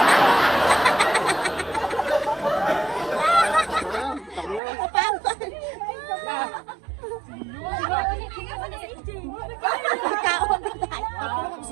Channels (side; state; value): left; drops out; at 4.6 s